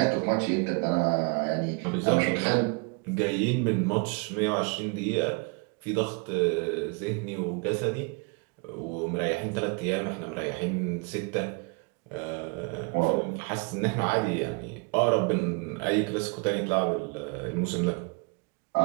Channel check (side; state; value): left; quieter; 32.5 dB